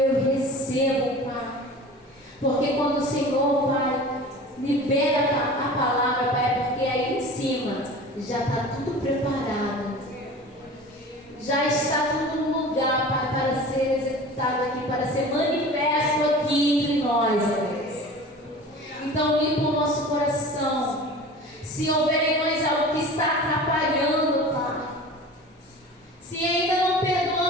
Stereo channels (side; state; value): both; normal; correlation 0.38